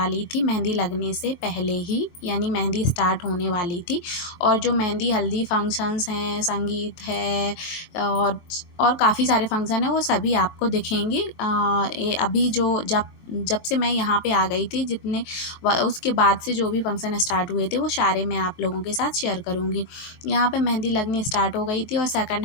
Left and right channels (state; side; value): late; right; 23 ms